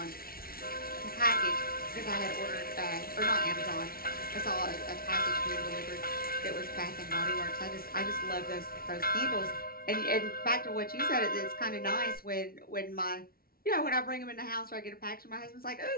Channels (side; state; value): right; late; 0.43 ms